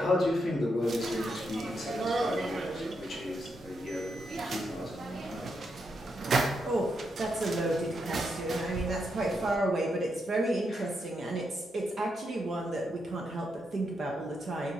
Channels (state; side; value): normal; both; correlation 0.82